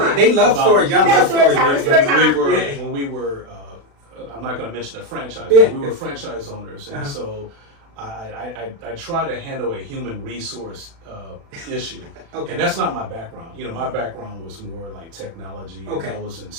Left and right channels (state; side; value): late; left; 36 ms